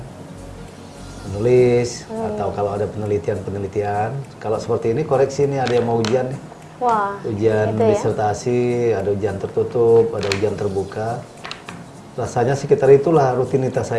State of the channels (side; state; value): both; identical; correlation 1.00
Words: menulis atau kalau ada penelitian-penelitian. Kalau seperti ini koreksi nih ada yang mau ujian nih. Wah, Ujian itu ya. disertasi, ada ujian tertutup, ada ujian terbuka. Rasanya sekitar itulah rutinitas